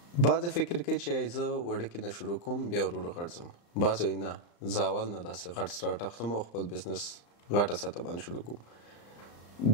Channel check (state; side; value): late; right; 35 ms